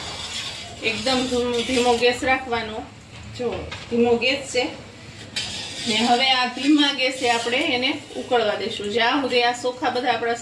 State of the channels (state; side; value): identical; both; correlation 1.00